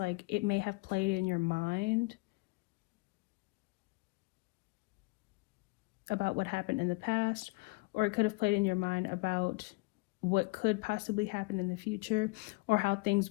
it may have played in your mind about what happened in the past, or it could have played in your mind about what could possibly happen in the future, or how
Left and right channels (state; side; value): quieter; right; 26.5 dB